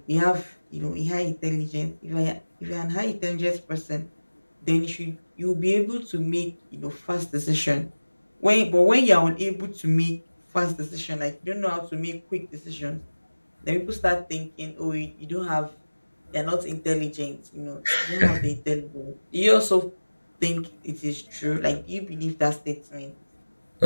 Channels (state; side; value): inverted; both; correlation -1.00